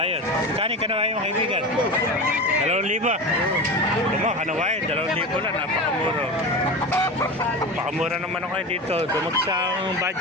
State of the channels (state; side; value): normal; both; correlation 0.26